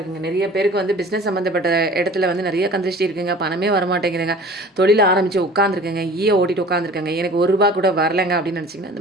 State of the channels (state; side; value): normal; both; correlation 0.45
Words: நிறைய பேருக்கு வந்து பிஸ்னஸ் சம்மந்தப்பட்ட இடத்துல வந்து நிறைய கந்திருஷ்டி இருக்குங்க. பணமே வரமாட்டேங்குதுங்க. தொழில் ஆரம்பித்து உட்காந்துருக்கேங்க, ஓட்டிட்டு உட்காந்துருக்கேங்க, எனக்கு ₹1 கூட வரலைங்க அப்படின்னு நினச்சிங்கன்னா